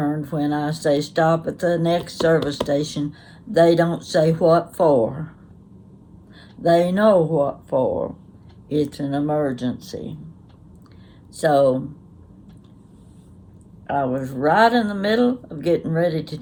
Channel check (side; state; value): both; identical; correlation 1.00